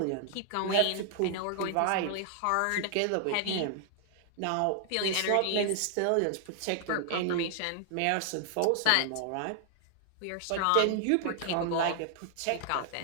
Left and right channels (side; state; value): both; different; correlation 0.00